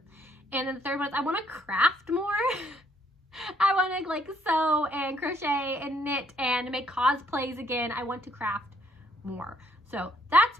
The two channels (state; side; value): normal; both; correlation 0.68